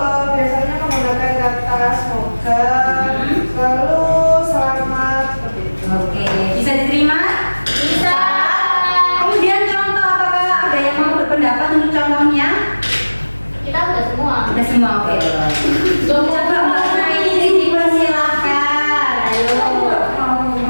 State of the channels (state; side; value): inverted; both; correlation -1.00